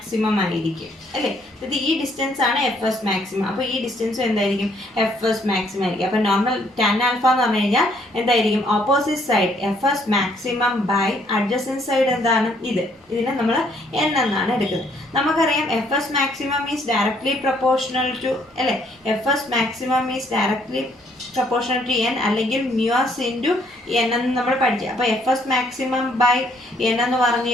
ആയിരിക്കും അല്ലേ? ഇത് ഈ ഡിസ്റ്റൻസ് ആണ് എഫ് എസ് മാക്സിമം. അപ്പോൾ ഈ ഡിസ്റ്റൻസും എന്തായിരിക്കും എഫ് എസ് മാക്സിമം ആയിരിക്കും. അപ്പോൾ നോർമൽ ടാൻ ആൽഫ എന്ന് പറഞ്ഞു കഴിഞ്ഞാൽ എന്തായിരിക്കും opposite side F S maximum by adjacent side എന്താണ് ഇതിനെ നമ്മൾ എൻ എന്നാണ് എടുക്കുന്നത്. നമുക്കറിയാം F S maximum is directly proportional to അല്ലേ, F S maximum is directly proportional to N അല്ലെങ്കിൽ മ്യൂസ് ഇൻറ്റു എൻ എന്ന് നമ്മൾ പഠിച്ചു. അപ്പോൾ F S maximum by N എന്ന് പറഞ്ഞു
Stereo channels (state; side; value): normal; both; correlation 0.67